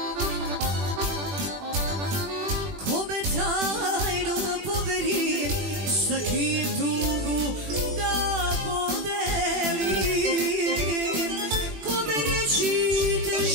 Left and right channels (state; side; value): late; left; 21 ms